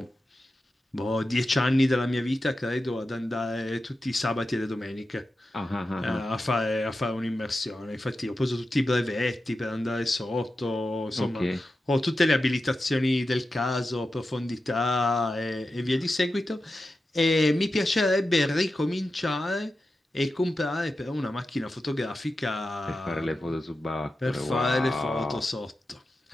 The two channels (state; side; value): normal; both; correlation 0.91